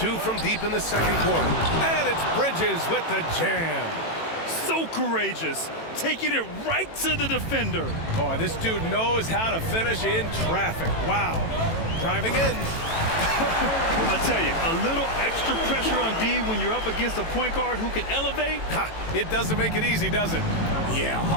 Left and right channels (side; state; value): right; late; 18 ms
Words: from deep in the second quarter. And it's Bridges with the jam. So courageous, taking it right to the defender. Oh, this dude knows how to finish in traffic. Wow. Driving in. I tell you, a little extra pressure on D when you're up against a point guard who can elevate. Ha, it doesn't make it easy, does it? Yeah,